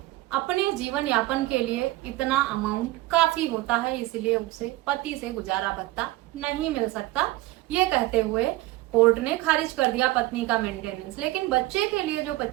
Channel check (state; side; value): quieter; left; 18.1 dB